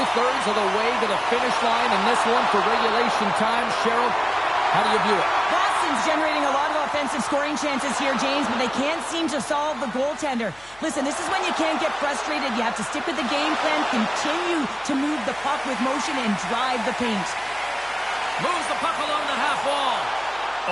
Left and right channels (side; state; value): left; noise; hum, 28 dB below the sound